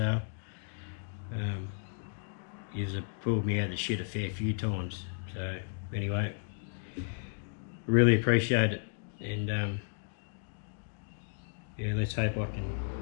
You've pulled me out of the shit a fair few times. So anyway, really appreciate it, and yeah, let's hope I can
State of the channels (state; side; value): silent; right; digital silence